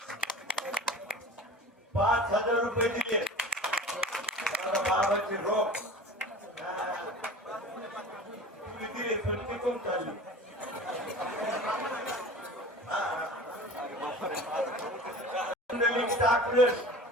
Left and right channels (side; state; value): both; normal; correlation 0.39